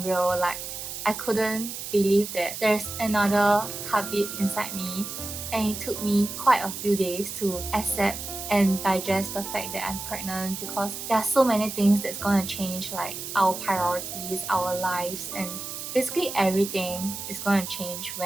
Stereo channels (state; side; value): noise; right; hiss, 7 dB below the sound